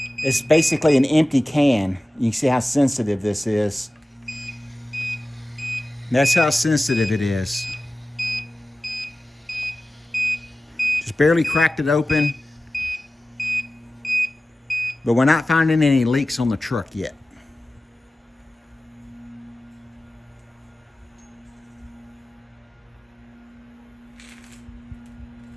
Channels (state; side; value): normal; both; correlation 0.96